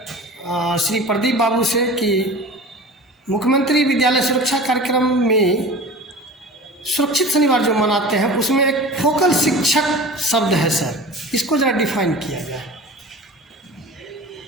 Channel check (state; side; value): normal; both; correlation 0.37